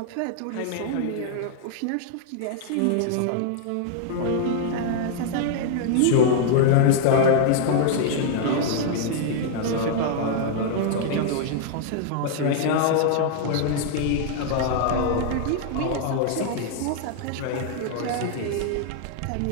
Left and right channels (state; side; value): different; both; correlation -0.01